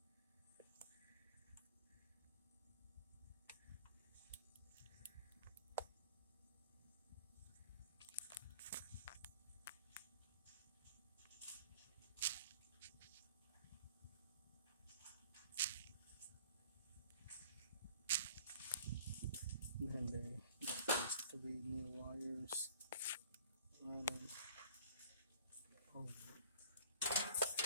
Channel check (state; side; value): inverted; both; correlation -0.51